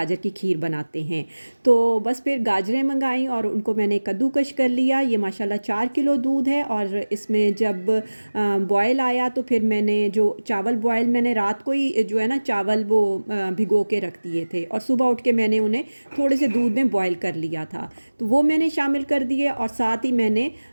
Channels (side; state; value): both; inverted; correlation -1.00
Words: की खीर बनाते हैं। तो बस फिर गाजरें मंगाई और उनको मैंने कद्दूकश कर लिया। ये माशाल्लाह 4 किलो दूध है, और इसमें जब बॉयल आया तो फिर मैंने जो चावल बॉयल मैंने रात को ही जो है ना चावल वो भिगो के रख दिए थे, और सुबह उठ के मैंने उन्हें थोड़े से दूध में बॉयल कर लिया था, तो वो मैंने शामिल कर दिए। और साथ ही मैंने